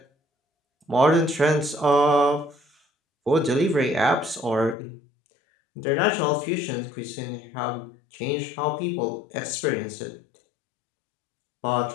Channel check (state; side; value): drops out; right; at 4.8 s